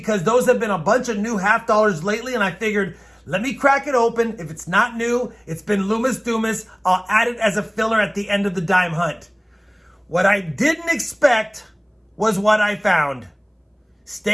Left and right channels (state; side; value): identical; both; correlation 1.00